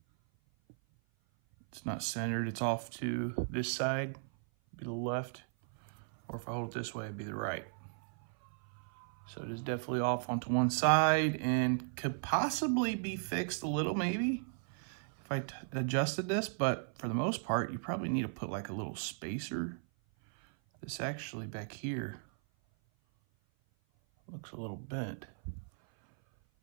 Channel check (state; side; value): silent; left; 54 dB below the other